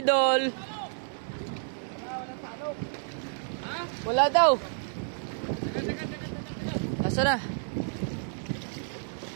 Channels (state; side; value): silent; left; digital silence